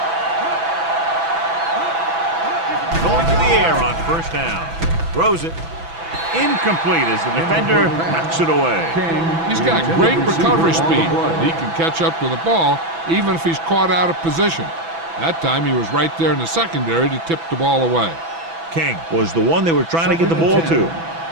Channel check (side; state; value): left; late; 6.0 ms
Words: Going to the air on 1st down. Throws it. Incomplete as the defender knocks it away. He's got great recovery speed. He can catch up to the ball even if he's caught out of position. That time he was right there in the secondary to tip the ball away. King was the one they were trying to get the ball to.